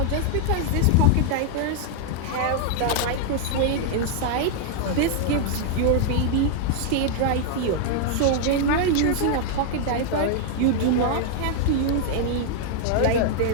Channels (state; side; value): different; both; correlation 0.00